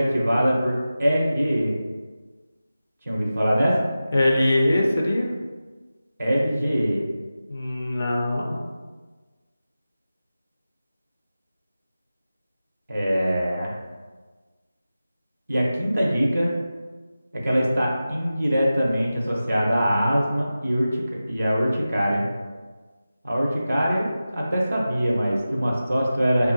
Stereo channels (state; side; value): inverted; both; correlation -0.94